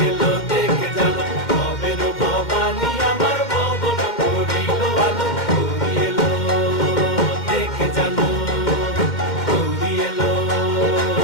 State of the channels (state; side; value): late; right; 2.1 ms